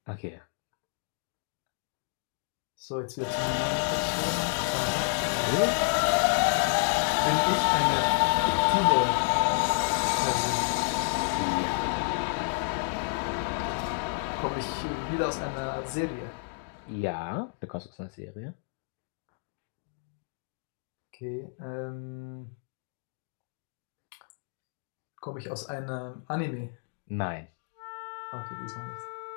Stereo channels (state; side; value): silent; right; 58 dB below the other